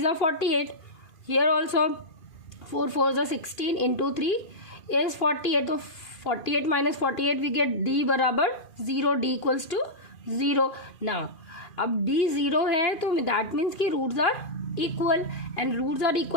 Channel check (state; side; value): late; right; 2.5 ms